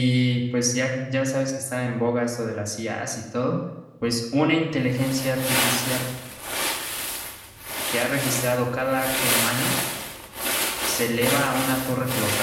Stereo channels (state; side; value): identical; both; correlation 1.00